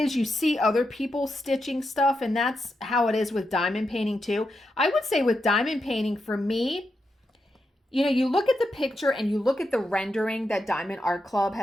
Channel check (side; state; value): both; normal; correlation 0.85